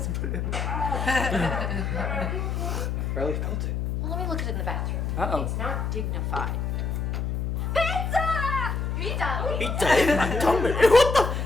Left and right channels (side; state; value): left; noise; hum, 1 dB below the sound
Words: to put it in. Barely felt it. Well, let me look at it in the bathroom. Uh-oh. It's not dignified. Pizza! Pizza! Pizza in my tummy. What the